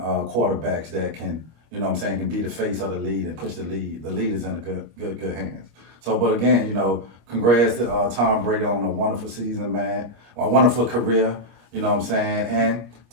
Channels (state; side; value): late; left; 25 ms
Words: quarterbacks that can, you know what I'm saying, can be the face of the league and push the lead. The lead is in a good hands. So, but again, you know, congrats to Tom Brady on a wonderful season, man. A wonderful career, you know what I'm saying? And